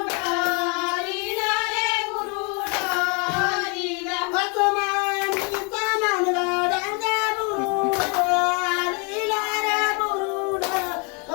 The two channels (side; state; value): right; quieter; 33.9 dB